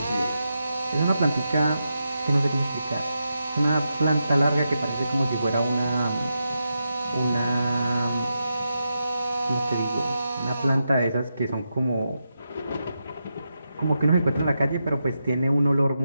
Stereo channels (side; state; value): both; inverted; correlation -0.86